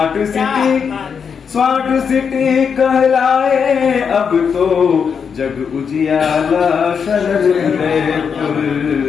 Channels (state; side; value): quieter; right; 6.6 dB